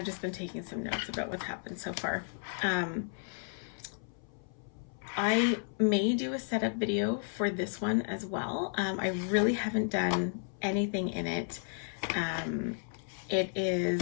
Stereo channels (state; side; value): silent; right; 56 dB below the other